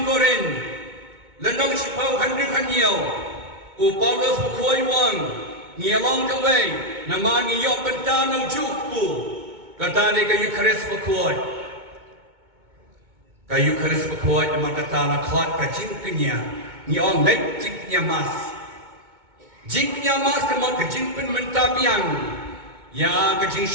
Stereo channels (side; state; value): left; late; 2.2 ms